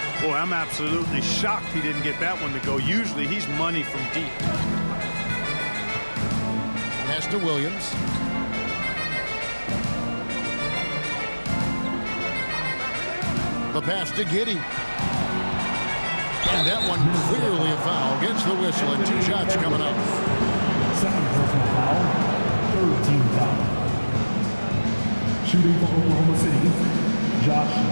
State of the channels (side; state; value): both; inverted; correlation -1.00